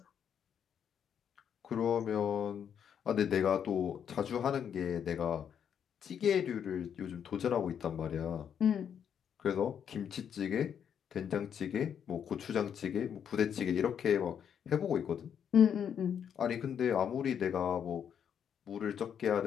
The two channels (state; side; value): quieter; right; 8.3 dB